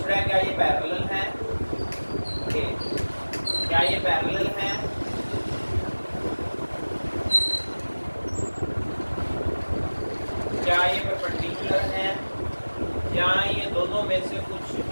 रहा है क्या ये पैरेलल है? ओके, क्या ये पैरेलल है? क्या ये परपेंडिकुलर है या ये दोनों में से कुछ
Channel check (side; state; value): both; inverted; correlation -1.00